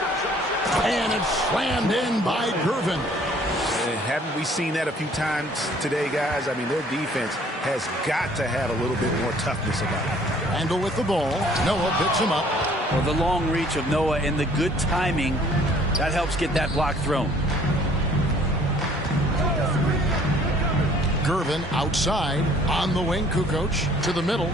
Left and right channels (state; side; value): normal; both; correlation 0.58